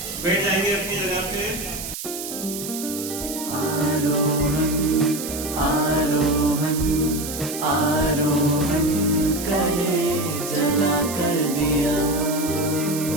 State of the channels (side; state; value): right; noise; hiss, 8 dB below the sound